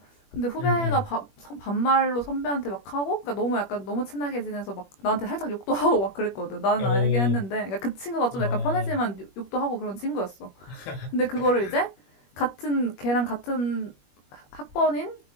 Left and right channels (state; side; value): late; right; 21 ms